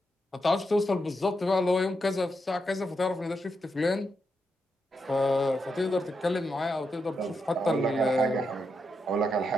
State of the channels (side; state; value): both; normal; correlation 0.84